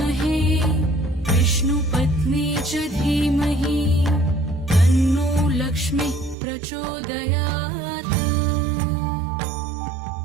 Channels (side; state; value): left; drops out; at 6.4 s